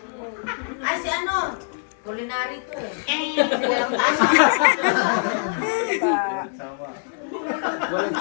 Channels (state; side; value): silent; right; digital silence